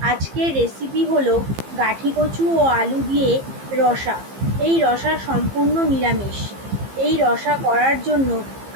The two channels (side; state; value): left; late; 15 ms